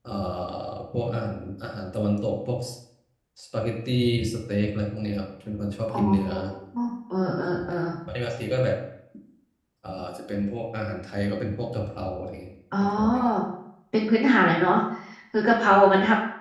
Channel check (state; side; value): identical; both; correlation 1.00